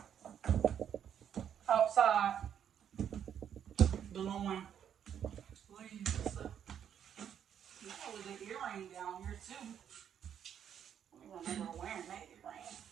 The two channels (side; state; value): left; quieter; 9.0 dB